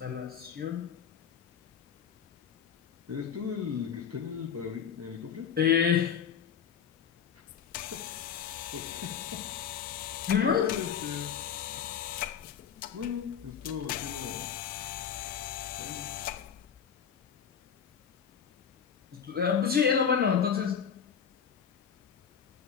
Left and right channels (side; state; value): right; quieter; 7.7 dB